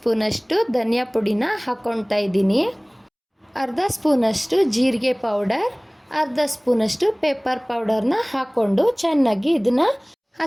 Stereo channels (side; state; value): both; identical; correlation 1.00